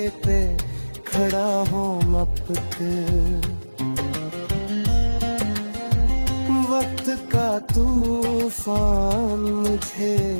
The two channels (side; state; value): both; inverted; correlation -1.00